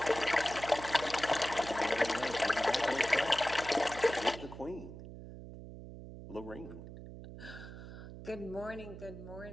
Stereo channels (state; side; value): noise; right; hum, 12 dB below the sound